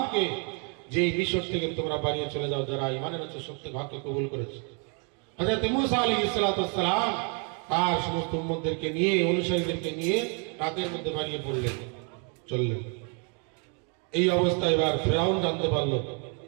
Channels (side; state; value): left; quieter; 37.7 dB